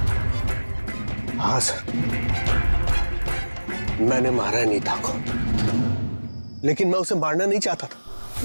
हाँ सर, मैंने मारा है नीता को। लेकिन मैं उसे मारना नहीं चाहता था।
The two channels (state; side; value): inverted; both; correlation -1.00